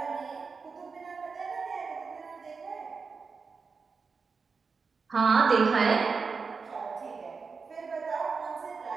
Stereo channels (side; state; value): left; quieter; 4.9 dB